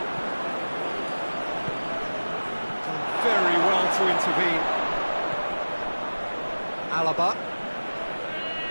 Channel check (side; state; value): both; inverted; correlation -1.00